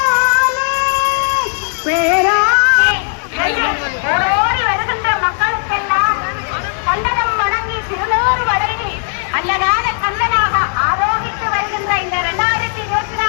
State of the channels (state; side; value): silent; right; 64 dB below the other